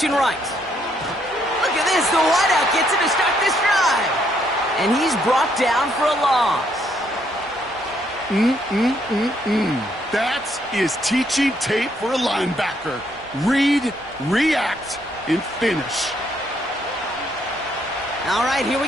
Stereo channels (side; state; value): both; normal; correlation 0.72